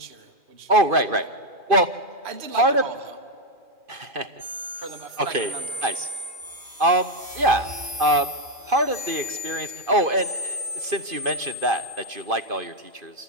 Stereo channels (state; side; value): late; left; 2.5 ms